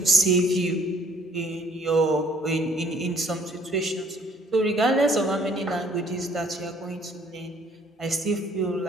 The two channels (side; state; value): both; normal; correlation 0.60